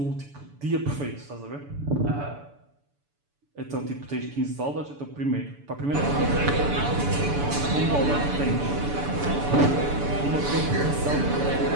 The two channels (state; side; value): late; left; 6.9 ms